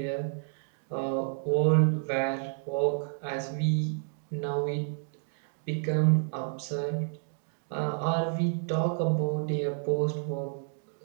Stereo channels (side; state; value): left; silent; digital silence